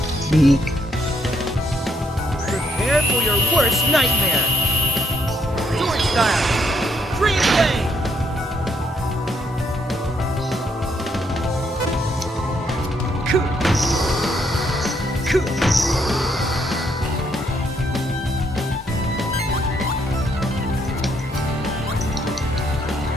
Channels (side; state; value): both; normal; correlation 0.74